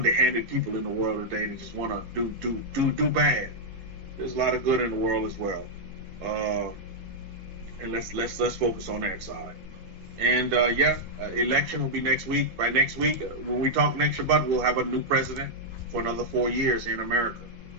people in the world today that just want to do bad. There's a lot of good in the world as well, and let's focus on that side. And election will be next week. By next week, when we talk next Shabbat, we'll have a new president for another 4 years here in America.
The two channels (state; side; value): late; left; 10 ms